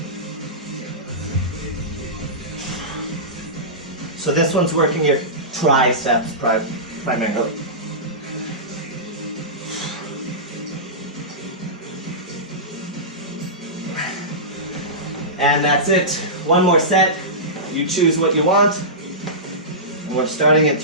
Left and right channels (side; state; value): both; normal; correlation -0.18